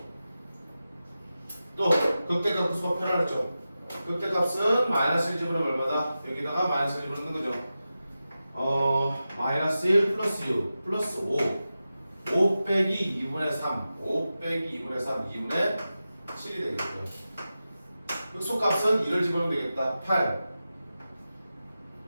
또 극대값 극소가 표현하죠. 극대값은 마이너스 1 집어넣으면 얼마다? 여기다가 마이너스 1 집어넣는 거죠. 마이너스 1 플러스 6 플러스 5 빼기 2분의 3 5 빼기 2분의 3 2분의 7이 되겠죠. 극소값은 2를 집어넣으면 되겠다. 8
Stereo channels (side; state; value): both; inverted; correlation -0.93